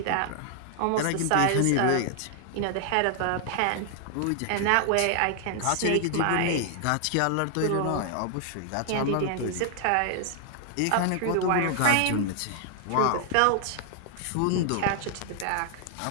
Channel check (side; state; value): both; different; correlation 0.00